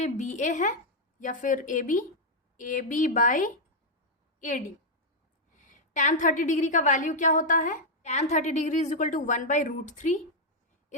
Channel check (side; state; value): both; normal; correlation -0.02